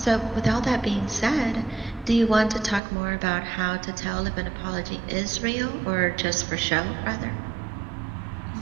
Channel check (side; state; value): left; drops out; at 2.8 s